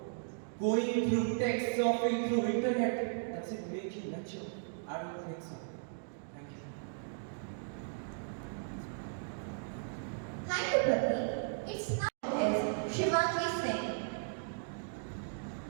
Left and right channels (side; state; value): left; silent; digital silence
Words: Going through text, surfing through internet, does it make you mature? I don't think so. Thank you. Thank you, Pratik. It's now is Shivaji Singh.